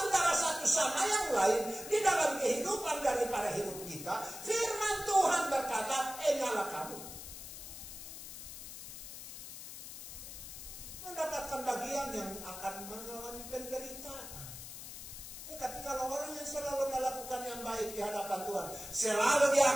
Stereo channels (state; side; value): noise; left; hiss, 11 dB below the sound